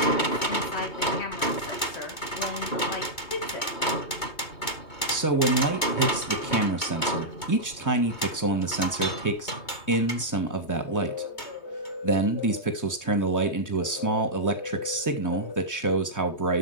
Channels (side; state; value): right; late; 3.2 ms